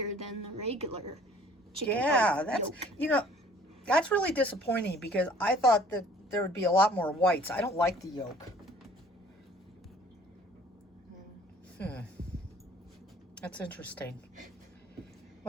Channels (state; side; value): normal; both; correlation 0.54